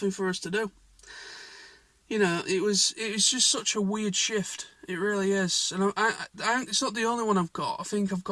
for us to do. It was just such a weird shift. It really is. And it's not the only one I've got. I think I've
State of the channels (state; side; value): identical; both; correlation 1.00